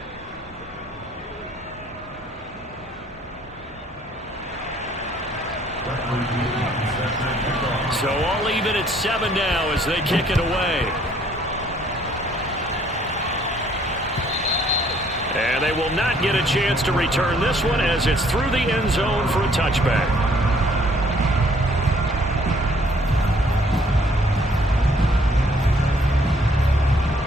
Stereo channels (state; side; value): normal; both; correlation 0.63